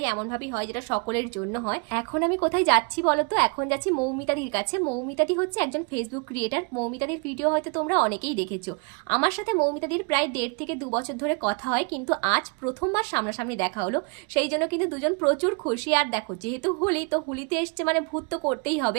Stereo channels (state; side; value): quieter; left; 33.7 dB